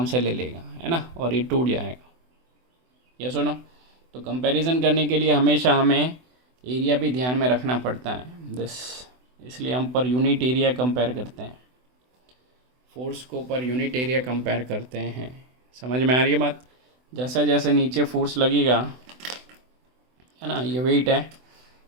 से ले लेगा, है ना, और ये टूट जाएगा। ये सुनो, तो कंपैरिजन करने के लिए हमेशा हमें एरिया भी ध्यान में रखना पड़ता है इसलिए हम पर यूनिट एरिया कंपेयर करते हैं, फोर्स को पर यूनिट एरिया कंपेयर करते हैं। समझ में आ रही है बात? जैसे जैसे नीचे फोर्स लगेगा, है ना, ये वेट है,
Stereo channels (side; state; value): left; late; 24 ms